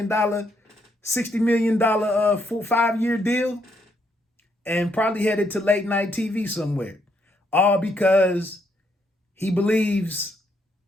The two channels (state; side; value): normal; both; correlation 0.74